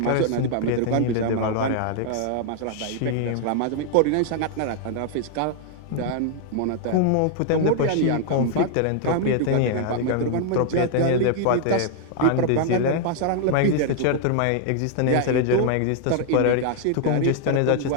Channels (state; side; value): different; both; correlation 0.00